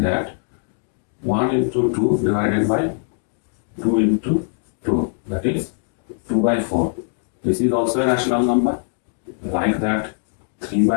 that 1 into 2 divided by 2 into 2, that is 2 by 4. This is also a rational number. Like that 3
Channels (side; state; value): right; silent; digital silence